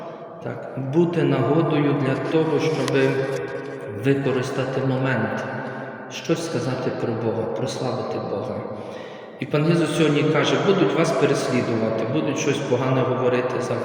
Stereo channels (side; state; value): both; identical; correlation 1.00